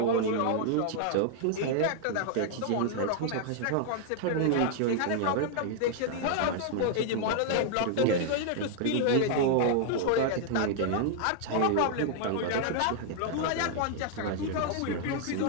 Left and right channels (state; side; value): different; both; correlation 0.00